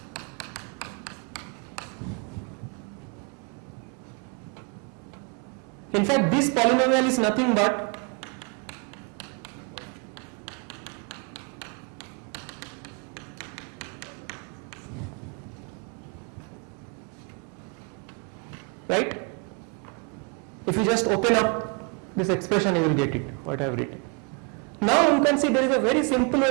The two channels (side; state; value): left; quieter; 34.5 dB